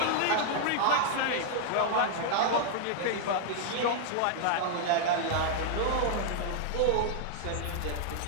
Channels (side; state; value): both; different; correlation -0.01